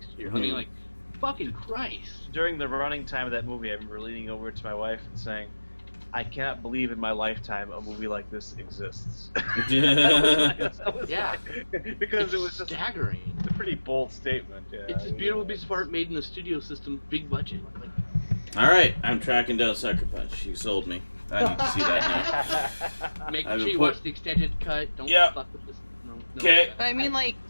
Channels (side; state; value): both; inverted; correlation -1.00